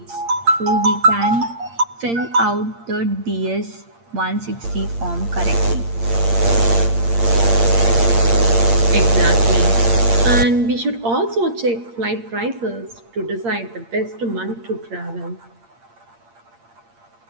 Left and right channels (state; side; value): late; left; 8.7 ms